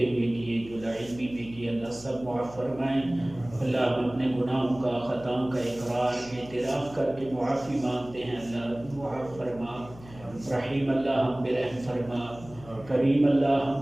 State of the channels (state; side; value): noise; left; hum, 19 dB below the sound